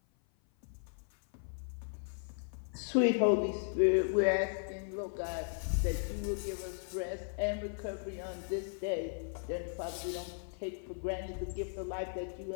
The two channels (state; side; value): silent; right; 54 dB below the other